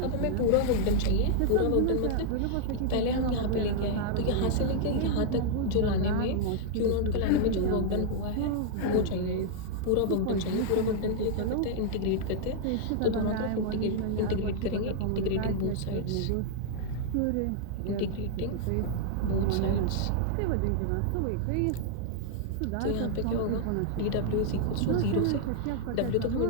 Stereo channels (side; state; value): both; different; correlation -0.01